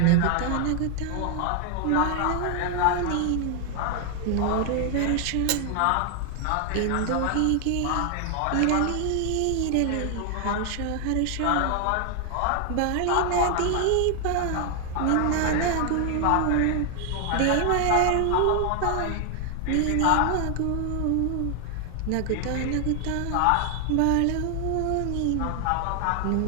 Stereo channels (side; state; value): both; different; correlation 0.00